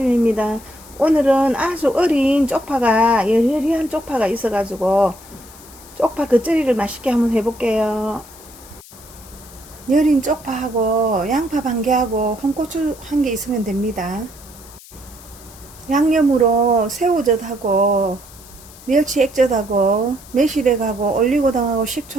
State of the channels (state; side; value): noise; left; hiss, 20 dB below the sound